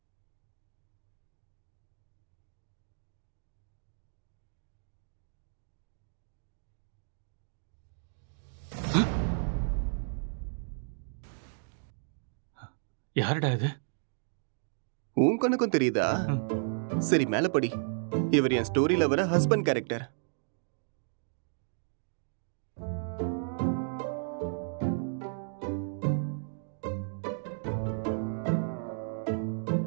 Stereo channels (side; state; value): left; silent; digital silence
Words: யாருடா இது? உன் கண்ணுக்கும் தெரியுதா? சரி, மேல படி. இவர் என் ஸ்டோரியில வர ஹஸ்பண்ட் கேரக்டர்.